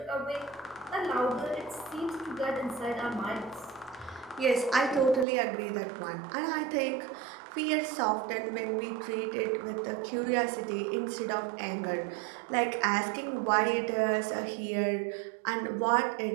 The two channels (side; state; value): left; drops out; at 5.2 s